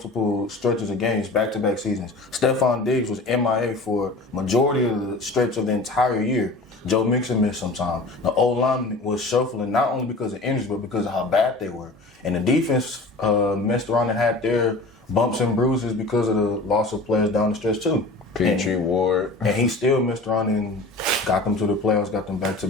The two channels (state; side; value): quieter; right; 3.0 dB